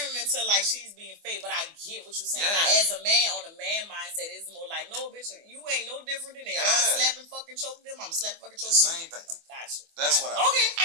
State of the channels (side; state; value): left; late; 24 ms